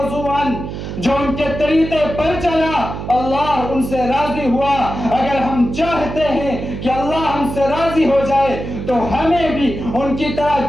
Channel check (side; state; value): right; noise; hum, 7 dB below the sound